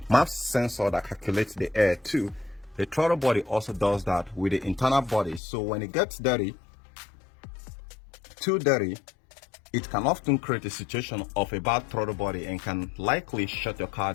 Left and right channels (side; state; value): right; drops out; at 5.4 s